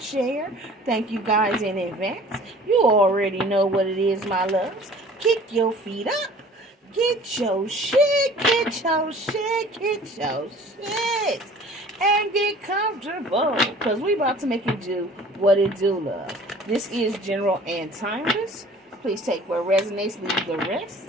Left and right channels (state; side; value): normal; both; correlation 0.48